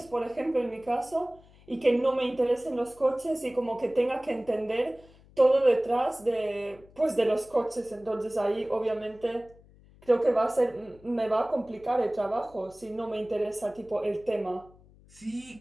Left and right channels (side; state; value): left; noise; hum, 26 dB below the sound